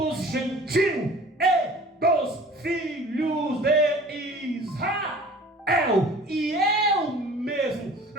gentios e dos filhos de Israel. E eu mesmo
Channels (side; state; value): both; normal; correlation 0.46